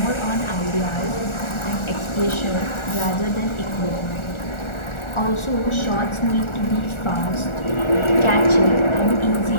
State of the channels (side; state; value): right; late; 1.4 ms